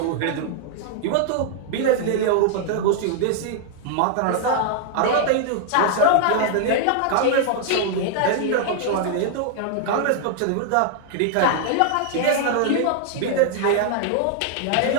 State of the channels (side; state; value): both; different; correlation 0.00